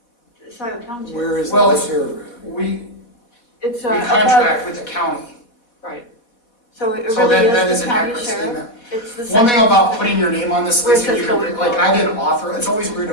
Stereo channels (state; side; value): late; right; 4.2 ms